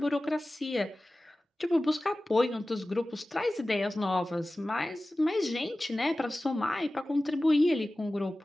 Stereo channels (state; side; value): normal; both; correlation 0.96